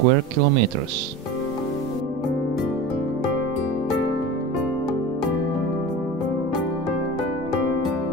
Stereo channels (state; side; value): normal; both; correlation 0.31